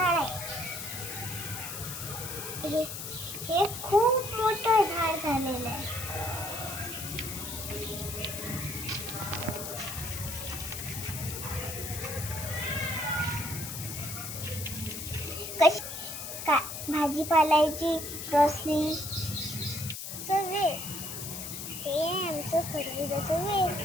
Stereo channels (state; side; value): noise; left; hiss, 7 dB below the sound